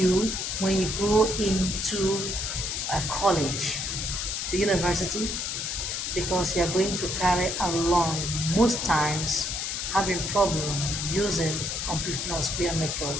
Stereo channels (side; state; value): left; noise; hiss, 2 dB below the sound